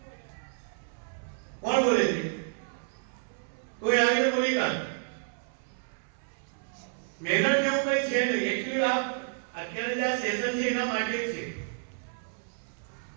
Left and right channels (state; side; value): silent; left; 58 dB below the other